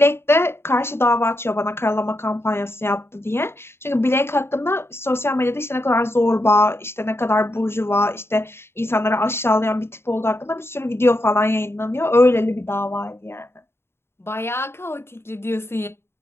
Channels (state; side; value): late; right; 0.12 ms